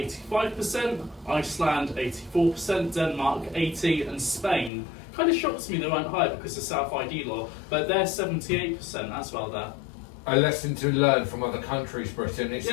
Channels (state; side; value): drops out; right; at 4.7 s